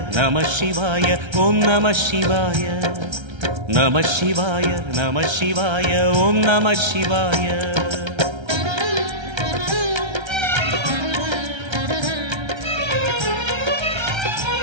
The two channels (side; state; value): left; late; 1.3 ms